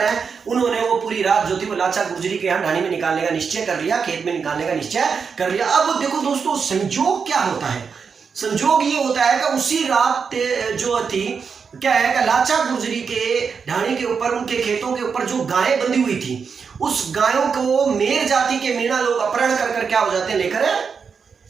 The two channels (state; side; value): quieter; left; 5.9 dB